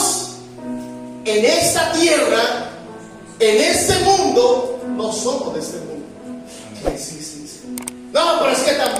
en esta tierra, en este mundo, no somos de este mundo. Sí. No, pero es que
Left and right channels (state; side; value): identical; both; correlation 1.00